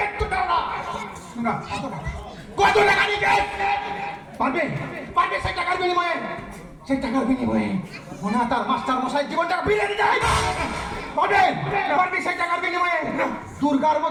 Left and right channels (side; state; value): both; identical; correlation 1.00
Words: দাও না। না, কত টাকা নিয়ে পারবে পারবে সেই টাকার বিনিময়ে, সেই টাকার বিনিময়ে ওনা তার মাস্টার মশাই জীবনটা বিলিয়ে দিতে হয়। পারবে পারবে সেই টাকার বিনিময়ে দুর্গার